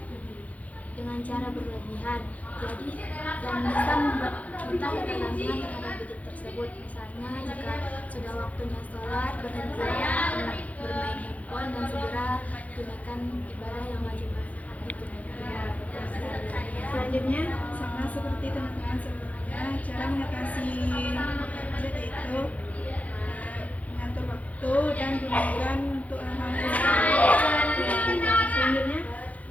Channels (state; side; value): late; right; 0.071 ms